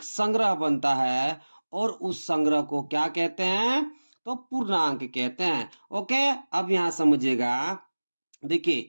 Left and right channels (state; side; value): inverted; both; correlation -1.00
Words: संग्रह बनता है, और उस संग्रह को क्या कहते हैं, तो पूर्णांक कहते हैं। ओके, अब यहां समझिएगा,